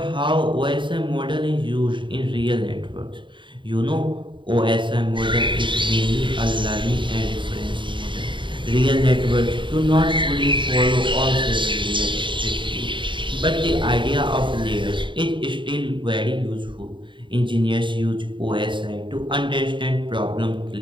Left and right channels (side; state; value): left; late; 0.23 ms